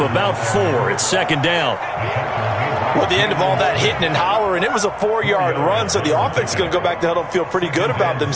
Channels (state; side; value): identical; both; correlation 1.00